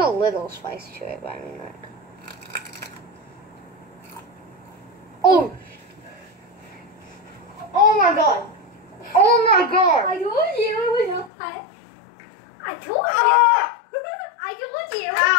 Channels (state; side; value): drops out; right; at 11.3 s